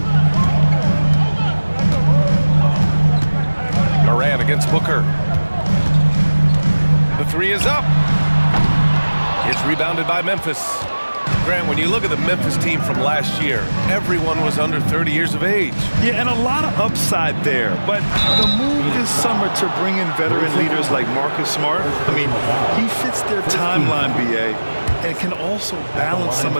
Morant against Booker. The three is up. It's rebounded by Memphis. Grant, when you look at the Memphis team from last year, everyone was under 30 years of age. Yeah, and a lot of upside there. But the move this summer to bring in veteran leaders like Marcus Smart, I mean, he fits their timeline, BA, and can also balance some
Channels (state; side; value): inverted; both; correlation -1.00